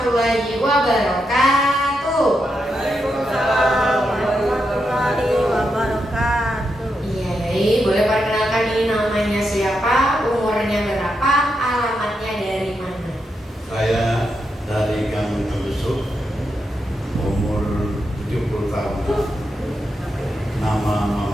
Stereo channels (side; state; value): both; normal; correlation 0.84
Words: wabarakatuh. Waalaikumsalam warahmatullahi wabarakatuh. Iya, boleh perkenalkan ini namanya siapa, umurnya berapa, alamatnya dari mana? Saya dari Gang Tembesuk, umur 70 tahun. Nama